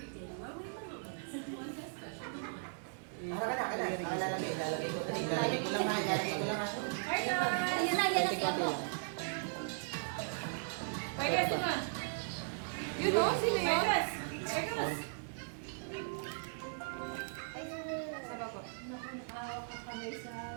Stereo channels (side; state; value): left; silent; digital silence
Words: Ilalagay ko. Ilalagay ko lang ha. Yan lang, yan lang. Pwede sino? You know sino yun? Vegas.